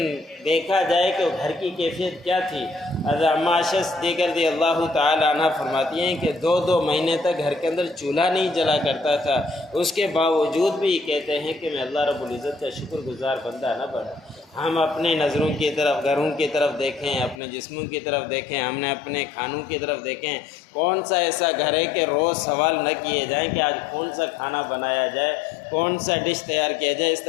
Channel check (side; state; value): right; drops out; at 17.4 s